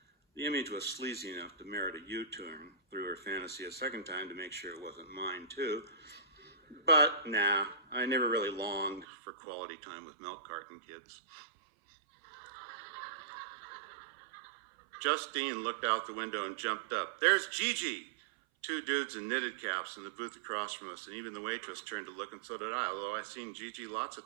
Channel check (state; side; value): drops out; left; at 9.1 s